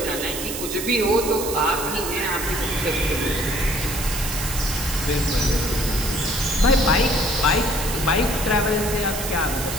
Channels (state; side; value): noise; right; hiss, 6 dB below the sound